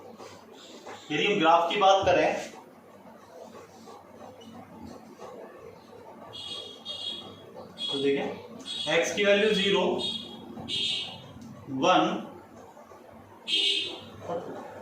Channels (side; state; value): both; identical; correlation 1.00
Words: यदि हम ग्राफ की बात करें तो देखें x की वैल्यू 0, 1,